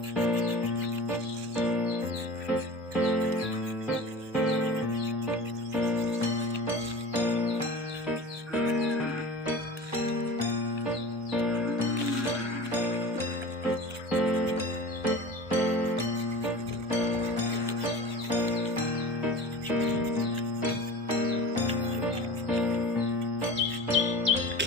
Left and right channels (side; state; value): both; normal; correlation 0.35